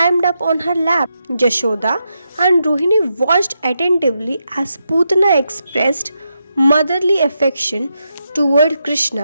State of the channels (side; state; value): both; inverted; correlation -0.84